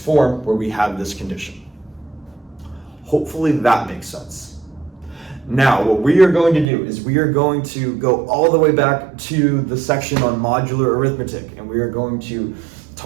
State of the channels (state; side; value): drops out; left; at 6.7 s